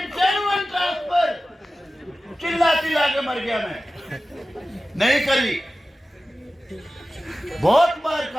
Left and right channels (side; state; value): both; normal; correlation 0.95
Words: मर गया मैं, नहीं करी। बहुत बार